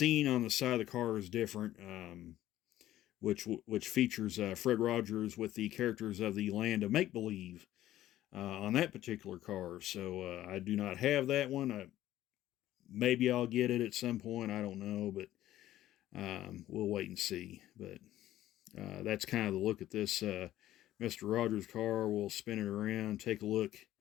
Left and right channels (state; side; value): quieter; right; 13.8 dB